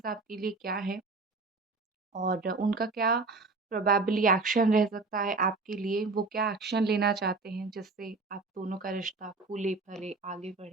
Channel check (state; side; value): quieter; left; 3.8 dB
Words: आपके लिए क्या है और उनका क्या प्रोबेबली एक्शन रह सकता है आपके लिए। वो क्या एक्शन लेना चाहते हैं जिससे आप दोनों का रिश्ता फूले फले आगे